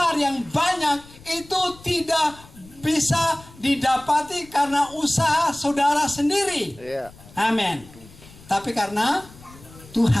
yang banyak, itu tidak bisa didapati karena usaha saudara sendiri. Amin. Tapi karena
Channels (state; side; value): noise; left; rumble, 22 dB below the sound